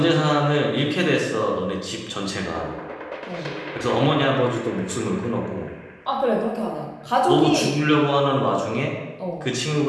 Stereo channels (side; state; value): both; identical; correlation 1.00